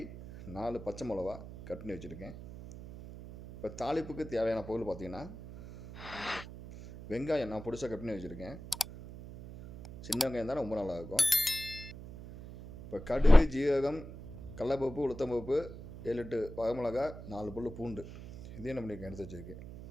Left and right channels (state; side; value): noise; right; hum, 13 dB below the sound